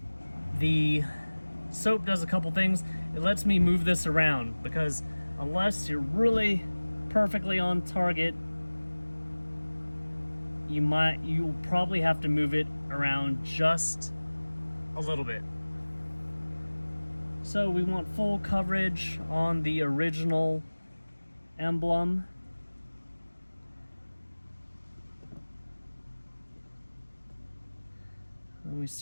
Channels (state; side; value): inverted; both; correlation -1.00